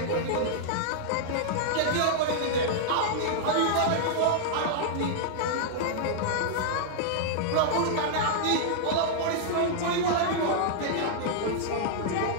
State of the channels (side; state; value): both; different; correlation -0.01